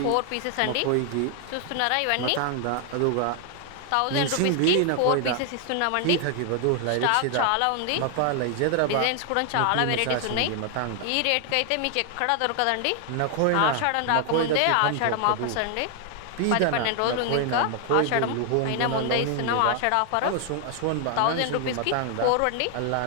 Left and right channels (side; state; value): both; different; correlation 0.00